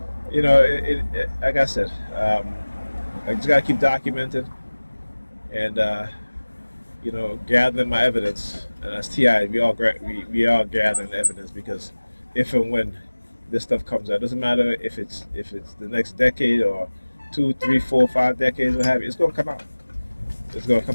like I said, I just gotta keep documenting and gathering my evidence. And as TI, we all gathering evidence, because if and when this stuff comes out, it doesn't matter if it's the next decade or 2, 3, 4, 5 decades, what have you, it's gonna come out. It's gonna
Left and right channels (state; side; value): inverted; both; correlation -1.00